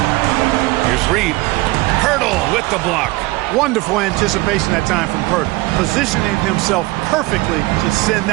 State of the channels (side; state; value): left; quieter; 20.8 dB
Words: Here's Reed. Poeltl with the block. Wonderful anticipation that time from Poeltl, positioning himself perfectly to send